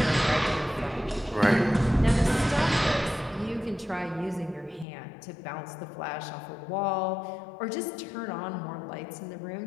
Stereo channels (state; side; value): drops out; right; at 4.9 s